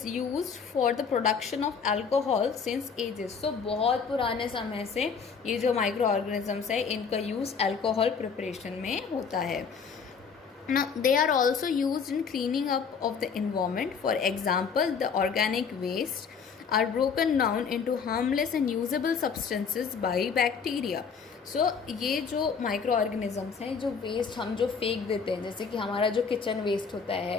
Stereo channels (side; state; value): right; quieter; 6.0 dB